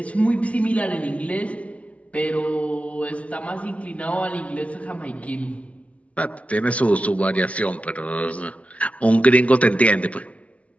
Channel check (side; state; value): right; late; 0.064 ms